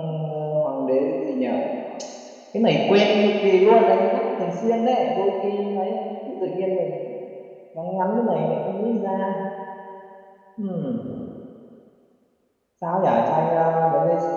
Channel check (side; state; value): both; identical; correlation 1.00